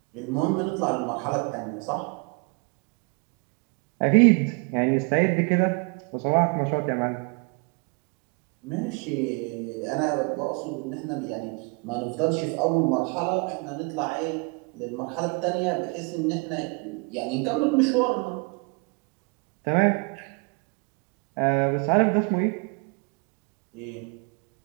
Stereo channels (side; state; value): left; quieter; 32.7 dB